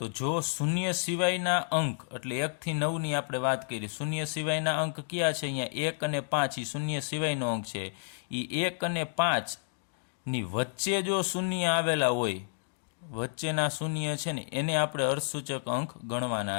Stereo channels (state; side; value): silent; right; digital silence